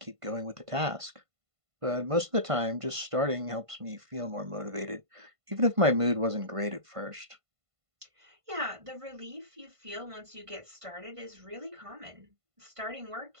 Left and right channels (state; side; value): late; left; 1.5 ms